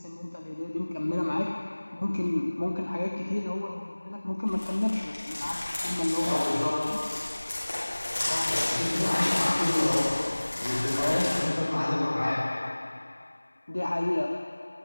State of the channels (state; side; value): inverted; both; correlation -1.00